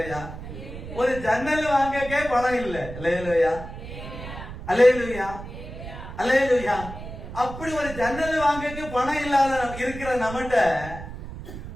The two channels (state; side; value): noise; right; rumble, 11 dB below the sound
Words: ஒரு ஜன்னல் வாங்கக்கே பணம் இல்ல. அல்லேலூயா. அல்லேலூயா. அல்லேலூயா. அப்படி ஒரு ஜன்னல் வாங்கக்கு பணம் இல்லாத இருக்கிற நம்மகிட்ட